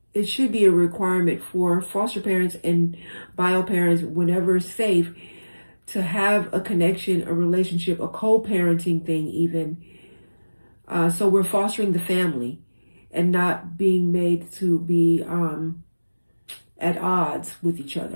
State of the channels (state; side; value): inverted; both; correlation -1.00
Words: it should be a requirement for foster parents and bio parents, whenever safe, to have a connection, a relationship, a co-parenting thing even. So we're fostering the family and not being made to be at odds with each